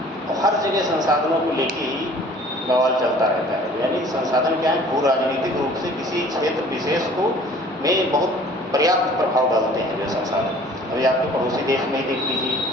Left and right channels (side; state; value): both; normal; correlation 0.50